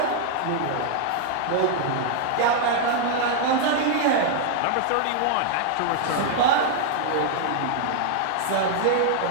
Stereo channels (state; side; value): different; both; correlation 0.00